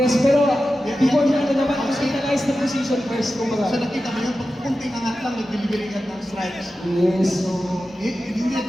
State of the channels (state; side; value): normal; both; correlation 0.93